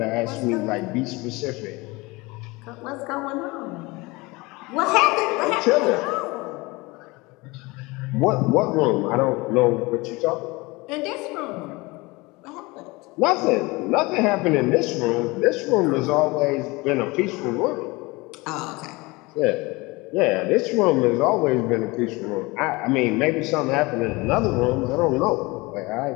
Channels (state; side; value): quieter; right; 23.7 dB